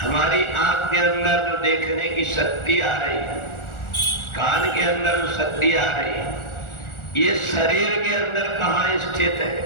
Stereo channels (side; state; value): right; late; 1.4 ms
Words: हमारी आंख के अंदर जो देखने की शक्ति आ रही है, कान के अंदर जो शक्ति आ रही है, ये शरीर के अंदर कहाँ स्थित है,